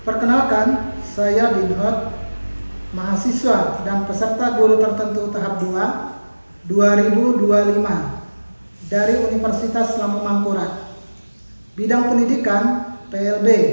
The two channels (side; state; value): both; inverted; correlation -1.00